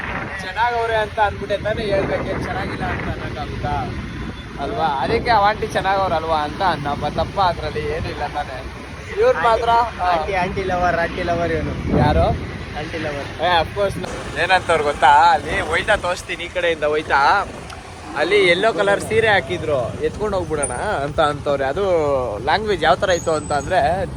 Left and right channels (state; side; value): identical; both; correlation 1.00